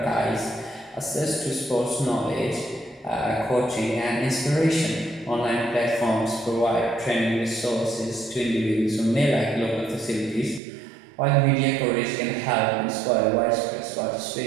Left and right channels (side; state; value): left; drops out; at 10.6 s